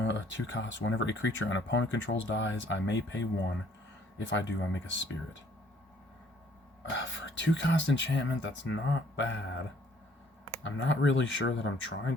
2 cost. Whenever a creature an opponent controls dies, I may pay 1. If I do, I make a spirit. For a 2 cost enchantment, that's not bad. I'm not really sure that I'm trying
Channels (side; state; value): both; normal; correlation 0.61